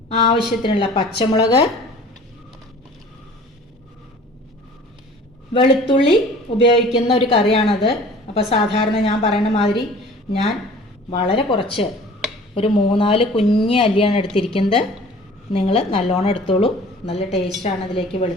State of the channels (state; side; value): normal; both; correlation 0.47